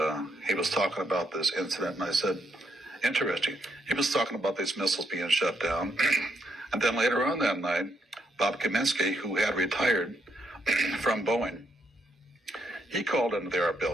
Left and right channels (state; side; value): normal; both; correlation 0.76